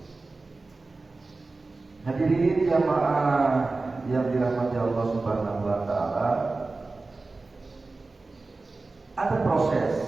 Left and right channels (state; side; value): quieter; left; 3.5 dB